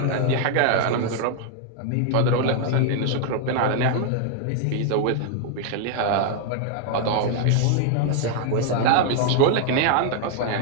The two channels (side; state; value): both; different; correlation 0.00